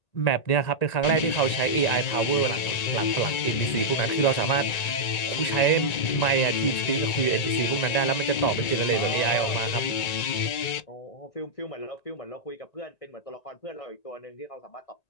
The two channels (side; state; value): right; late; 1.9 ms